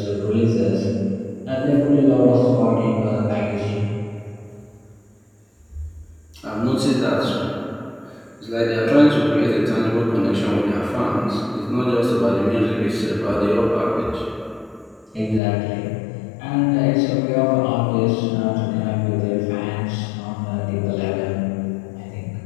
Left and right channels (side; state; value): right; drops out; at 15.4 s